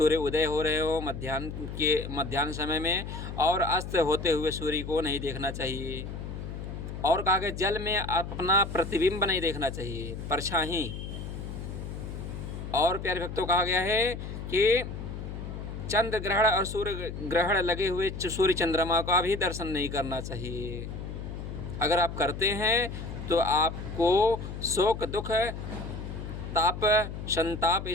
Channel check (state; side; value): noise; left; hum, 8 dB below the sound